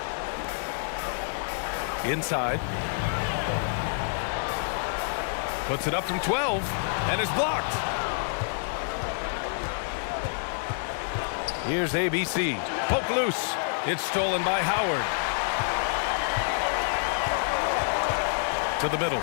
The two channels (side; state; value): right; silent; digital silence